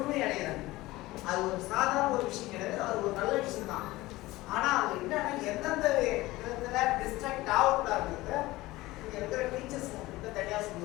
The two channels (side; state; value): right; quieter; 18.8 dB